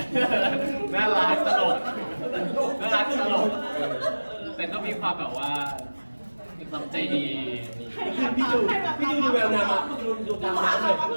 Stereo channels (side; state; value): both; inverted; correlation -1.00